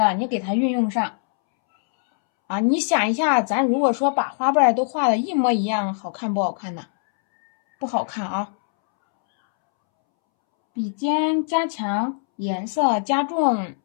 你给它运用上啊。你想一下，咱如果说把花瓣都画的一模一样，好看不好看呢？不好看啊。笔尖加强，颜色加重，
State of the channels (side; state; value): right; silent; 64 dB below the other